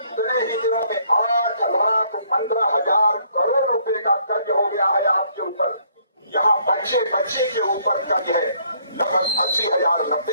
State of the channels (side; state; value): both; inverted; correlation -0.65